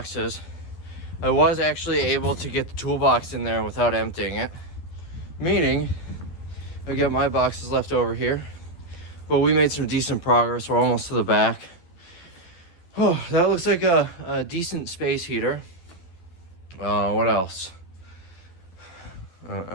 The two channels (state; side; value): late; right; 11 ms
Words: I was actually able to get the toolbox in there without emptying it. Meaning, I got my boxes left over here. But we made some decent progress. We're almost to the back. Oh, that looks like a decent space heater. What else? I